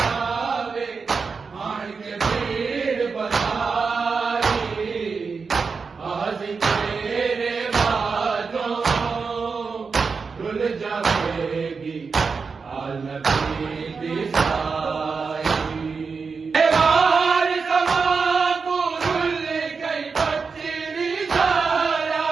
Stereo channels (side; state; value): left; quieter; 5.0 dB